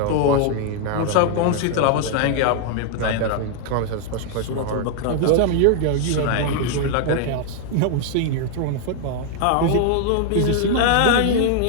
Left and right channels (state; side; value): different; both; correlation 0.00